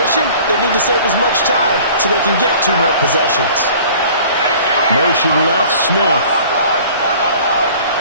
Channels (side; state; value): both; inverted; correlation -0.48